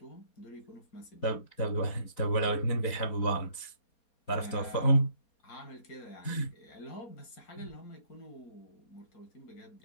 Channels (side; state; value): right; late; 4.3 ms